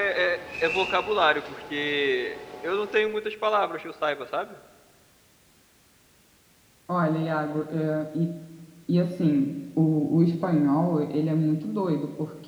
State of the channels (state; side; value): identical; both; correlation 1.00